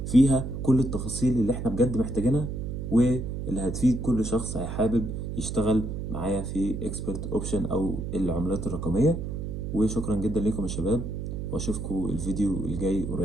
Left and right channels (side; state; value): right; noise; hum, 5 dB below the sound